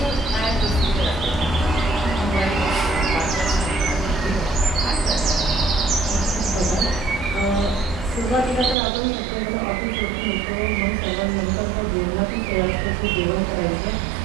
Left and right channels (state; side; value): drops out; left; at 8.8 s